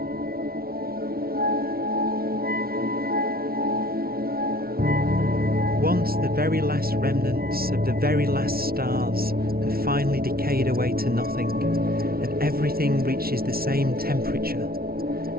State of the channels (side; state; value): left; late; 0.44 ms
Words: Once the very last remnants of the very last stars have finally decayed away to nothing, and everything reaches the same temperature,